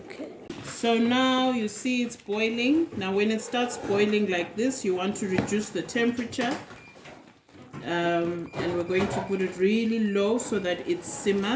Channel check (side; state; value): both; identical; correlation 1.00